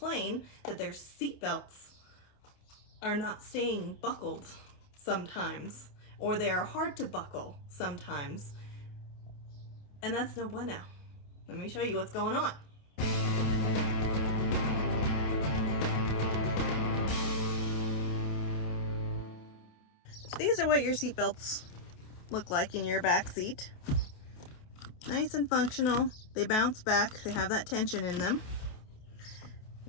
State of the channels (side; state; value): right; late; 28 ms